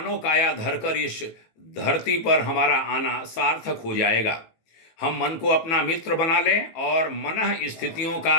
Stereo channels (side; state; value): right; late; 18 ms